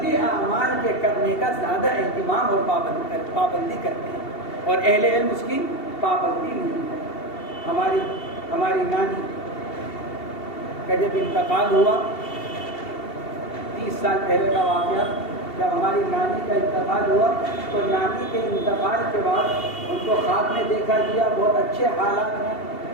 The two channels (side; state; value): right; late; 2.7 ms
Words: اعمال کے کرنے کا زیادہ اہتمام اور پابندی کرتے ہیں، اور اہل علم اس کی پابندی نہیں کرتے۔ ہماری نانی کا جب انتقال ہوا 30 سال پہلے کا واقعہ، جب ہماری نانی کا انتقال ہوا تو نانی کے انتقال کے بعد ان کو خواب میں دیکھا گیا بہت اچھے حالات میں،